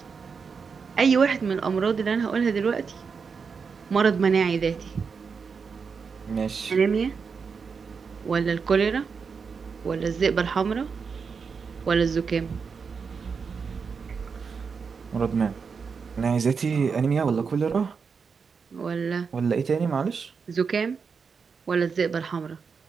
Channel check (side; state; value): left; quieter; 5.6 dB